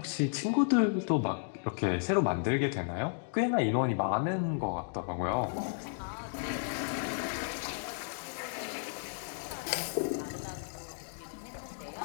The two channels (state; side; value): silent; right; digital silence